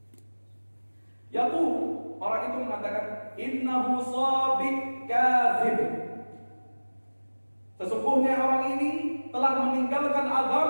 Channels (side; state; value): both; inverted; correlation -1.00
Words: Yaqul, orang itu mengatakan, innahu sabiq kadzib. Sesungguhnya orang ini telah meninggalkan